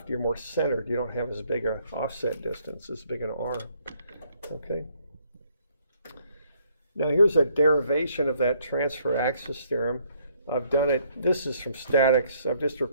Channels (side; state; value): both; inverted; correlation -0.67